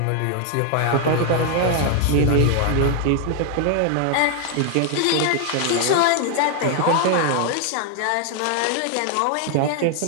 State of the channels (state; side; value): different; both; correlation 0.00